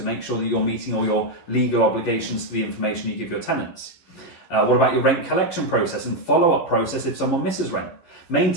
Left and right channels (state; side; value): late; right; 11 ms